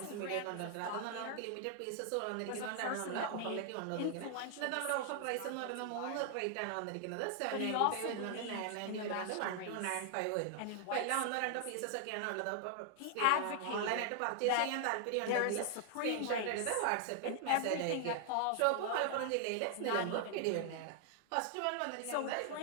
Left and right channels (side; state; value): both; different; correlation 0.00